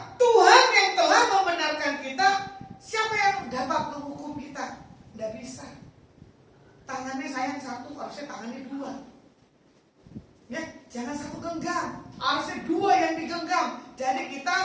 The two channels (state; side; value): identical; both; correlation 1.00